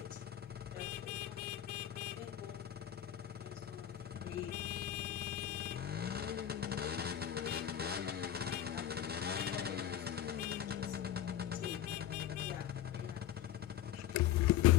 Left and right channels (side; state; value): right; quieter; 11.1 dB